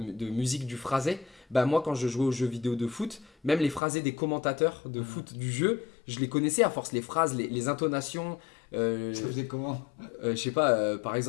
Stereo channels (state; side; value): drops out; right; at 3.8 s